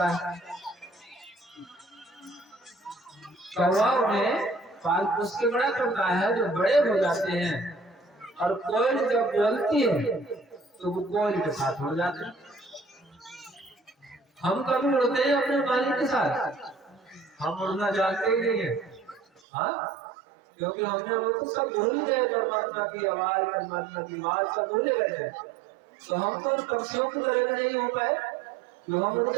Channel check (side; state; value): left; drops out; at 19.4 s